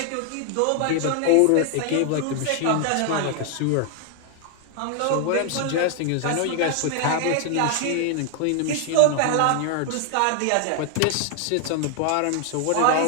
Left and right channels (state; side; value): different; both; correlation 0.00